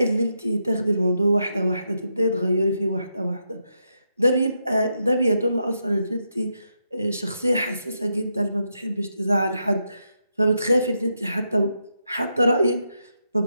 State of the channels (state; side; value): inverted; both; correlation -0.83